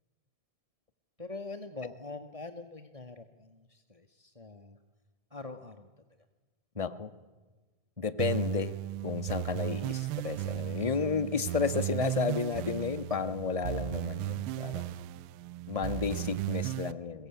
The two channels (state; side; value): late; left; 1.7 ms